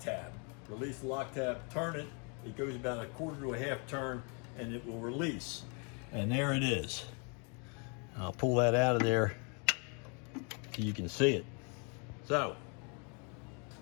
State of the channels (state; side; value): quieter; right; 36.2 dB